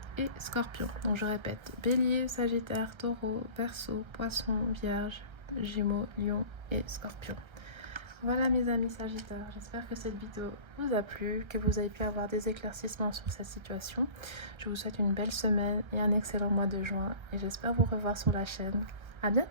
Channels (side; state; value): left; late; 1.3 ms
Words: et Scorpion. Donc je répète, Bélier, Sagittaire, Taureau, Verseau, Poisson, Vierge, Gémeaux, Lion et Scorpion. Voilà mes amis Sagittaires, j'espère que cette vidéo vous a plu, que vous avez pu avoir des éclaircissements sur cette situation. Je vous souhaite une belle semaine et un excellent mois de juin et j'espère vous revoir sur la chaîne. À